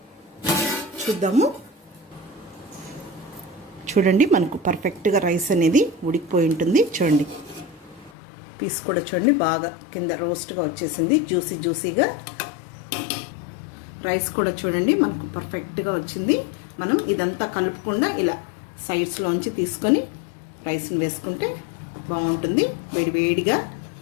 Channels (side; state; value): right; drops out; at 8.1 s